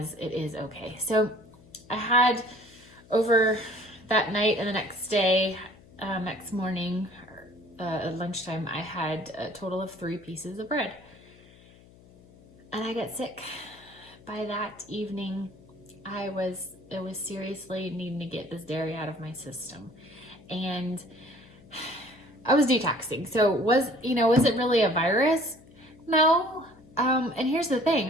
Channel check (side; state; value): left; noise; hum, 24 dB below the sound